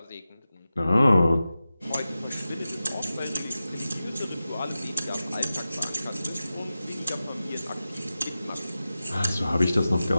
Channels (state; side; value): inverted; both; correlation -0.94